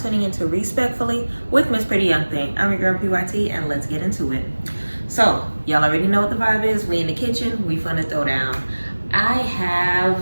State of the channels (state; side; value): inverted; both; correlation -1.00